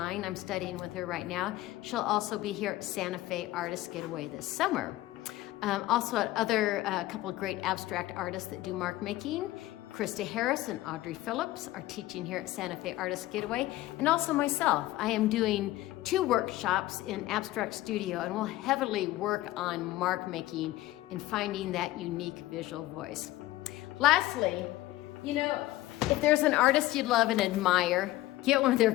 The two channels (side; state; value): right; quieter; 16.7 dB